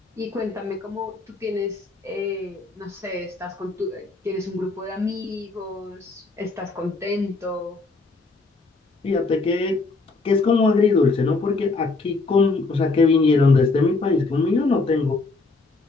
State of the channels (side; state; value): right; quieter; 3.6 dB